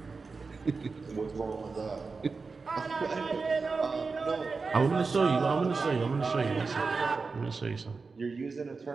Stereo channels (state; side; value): quieter; left; 4.4 dB